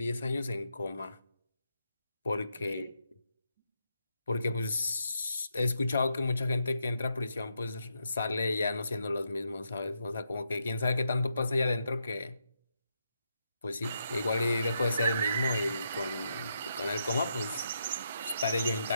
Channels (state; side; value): inverted; both; correlation -0.81